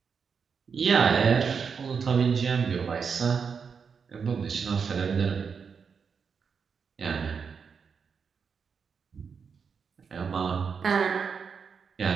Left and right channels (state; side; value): quieter; left; 6.1 dB